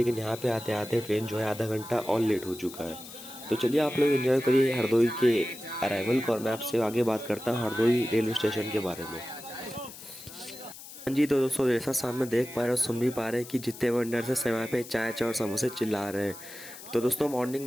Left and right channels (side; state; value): left; noise; hiss, 15 dB below the sound